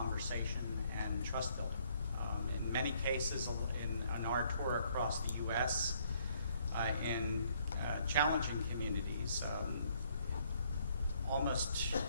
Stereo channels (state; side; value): inverted; both; correlation -0.66